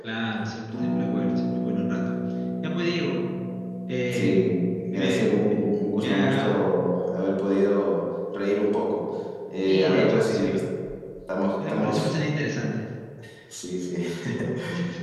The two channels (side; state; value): both; identical; correlation 1.00